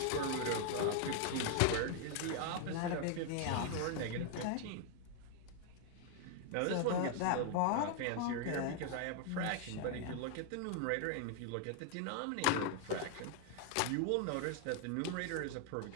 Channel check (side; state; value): both; different; correlation 0.00